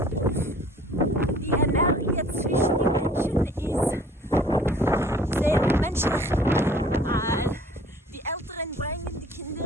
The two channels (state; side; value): normal; both; correlation 0.52